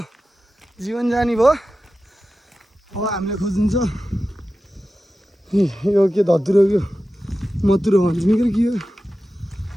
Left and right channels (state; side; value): normal; both; correlation 0.93